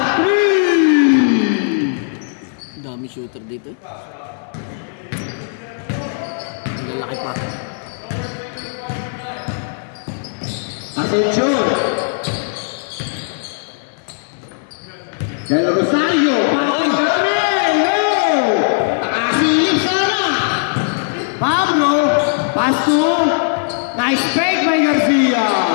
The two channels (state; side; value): silent; right; digital silence